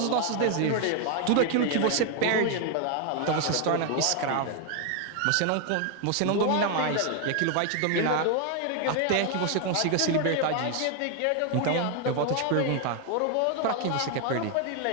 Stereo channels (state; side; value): different; both; correlation 0.01